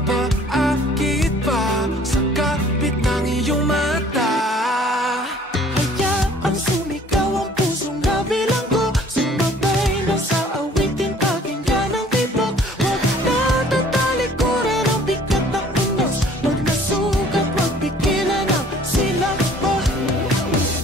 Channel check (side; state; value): both; normal; correlation 0.54